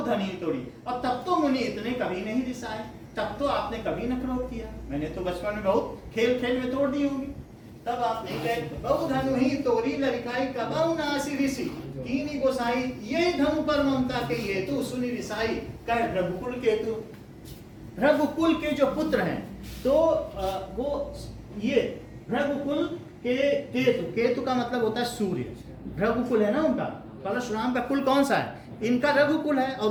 धनी तोड़ी, और तब तो मुनि इतने कभी नहीं रिसाए, तब तो आपने कभी न क्रोध किया, मैंने तो बचपन में बहुत खेल खेल में तोड़ दी होगी, तब आप नहीं कहे बहु धनुही तोरी लड़काई कबहू ना ऐसी ऋषि कीनी गोसाई, ये धनु पर ममता के हेतु सुनी रिसाई, कह रघुकुल केतु। रघुकुल के जो पुत्र हैं तो वो ये रघुकुल के केतु, केतु का मतलब होता है सूर्य, रघुकुल है ना उनका, परशुराम का कुल कौन सा है? इनका रघुकुल है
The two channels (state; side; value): identical; both; correlation 1.00